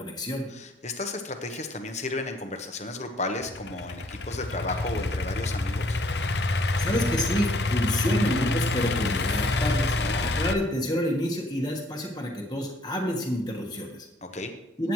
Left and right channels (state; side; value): normal; both; correlation 0.63